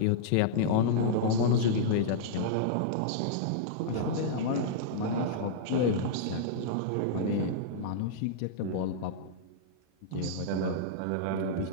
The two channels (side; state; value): both; different; correlation -0.02